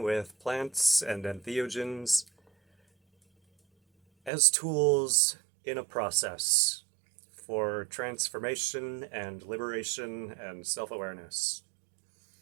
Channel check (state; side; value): drops out; left; at 4.3 s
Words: with plants and entheogens as tools in a process for transformation and liberation and self-awareness.